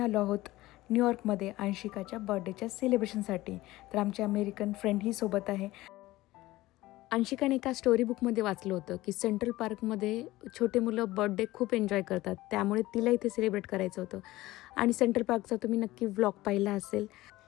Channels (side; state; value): right; quieter; 17.9 dB